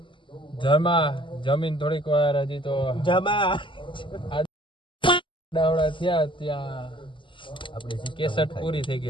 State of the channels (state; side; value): late; right; 0.24 ms